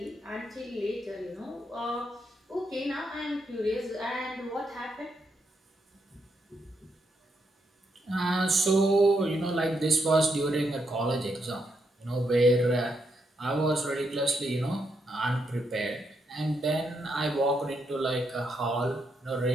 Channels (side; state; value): both; normal; correlation 0.80